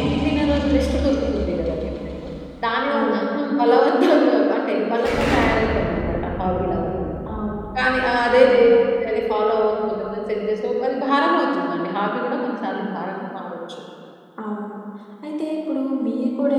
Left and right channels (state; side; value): identical; both; correlation 1.00